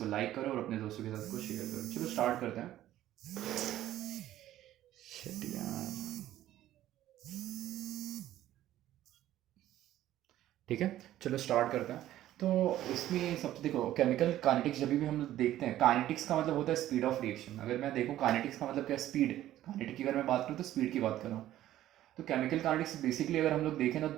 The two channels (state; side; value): quieter; left; 13.4 dB